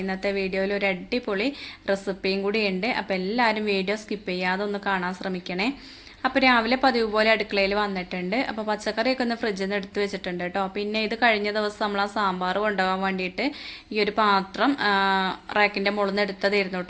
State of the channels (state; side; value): identical; both; correlation 1.00